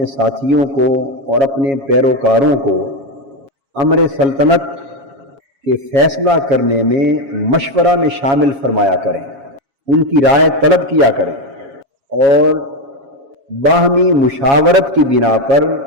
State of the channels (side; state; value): left; late; 7.3 ms